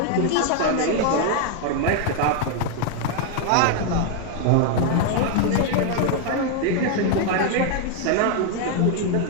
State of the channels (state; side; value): different; both; correlation 0.00